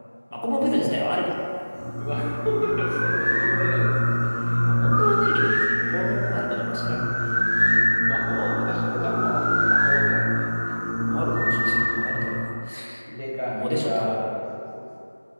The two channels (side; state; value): both; inverted; correlation -1.00